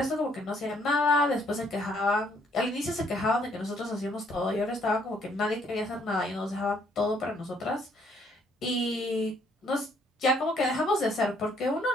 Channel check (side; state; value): both; normal; correlation 0.67